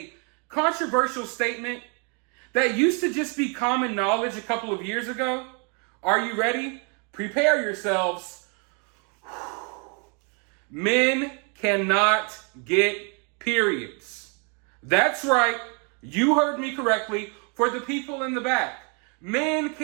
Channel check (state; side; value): quieter; left; 35.8 dB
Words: controversial statement that used to just be common knowledge a couple of years ago? Are you ready? Prepare yourselves. Men cannot get periods. That's right, you heard me correctly. For the people in the back, men